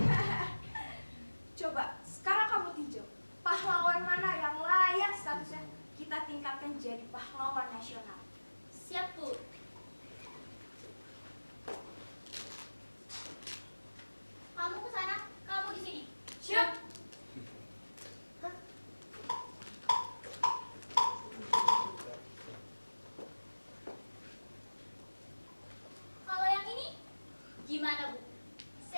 Coba sekarang kamu tinjau pahlawan mana yang layak statusnya kita tingkatkan jadi pahlawan nasional. Siap, Bu. Kamu ke sana, kamu di sini. Siap. Kalau yang ini, gimana, Bu?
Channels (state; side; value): inverted; both; correlation -1.00